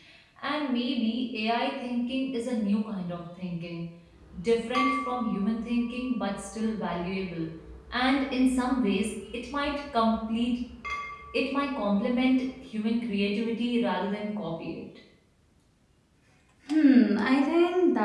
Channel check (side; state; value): both; identical; correlation 1.00